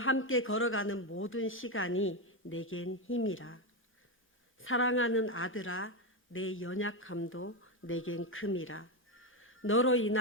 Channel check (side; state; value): both; normal; correlation 0.10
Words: 걸어가는 모든 시간이 내겐 힘이라. 사랑하는 아들아, 내 연약함도 내겐 큼이라. 너로